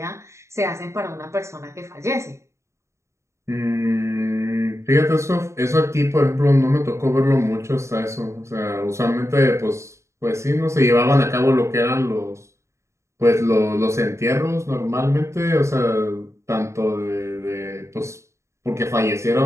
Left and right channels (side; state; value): left; late; 0.14 ms